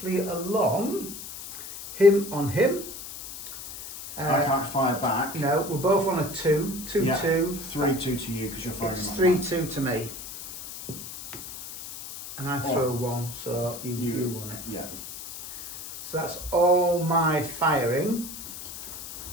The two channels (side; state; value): left; noise; hiss, 11 dB below the sound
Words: along, him on him. I can't fire back. No, we're both on a 2, 2, Yeah. 2. 3, 2 to you because you're firing. It's my 3, back. 2 to me. And I throw 1, so you won it. Yeah. So that's all my firing.